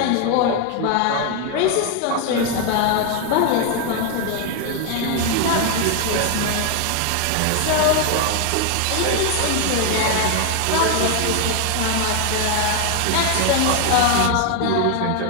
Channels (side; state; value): both; different; correlation 0.01